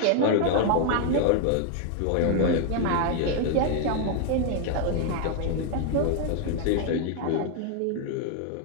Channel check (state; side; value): different; both; correlation 0.00